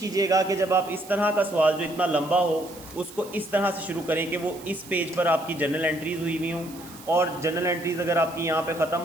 कि जब आप इस तरह का सवाल जो इतना लंबा हो उसको इस तरह से शुरू करें कि वो इस पेज पर आपकी जनरल एंट्रीज़ हुई हुई हों, और जनरल एंट्रीज़ अगर आपकी यहाँ पे ख़त्म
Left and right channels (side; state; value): right; noise; hiss, 19 dB below the sound